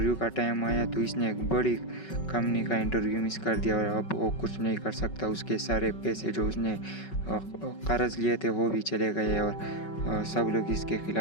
का टाइम आया तो इसने एक बड़ी कंपनी का इंटरव्यू मिस कर दिया और अब वो कुछ नहीं कर सकता। उसके सारे पैसे जो उसने कर्ज लिए थे वो भी चले गए और सब लोग इसके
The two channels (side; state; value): right; late; 5.3 ms